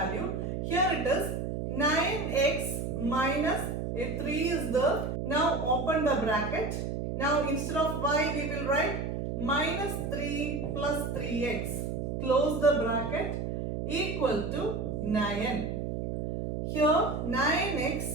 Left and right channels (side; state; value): right; noise; hum, 3 dB below the sound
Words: Here it is 9x minus a 3 is there. Now open the bracket. Now instead of y we will write minus 3 plus 3x. Close the bracket equal to 9. Here